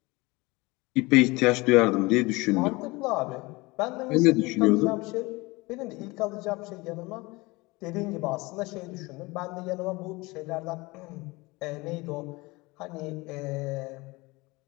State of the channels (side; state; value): right; quieter; 23.3 dB